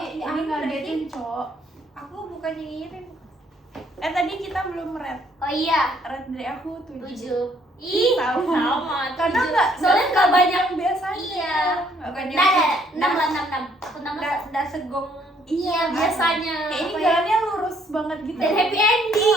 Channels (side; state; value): both; normal; correlation 0.66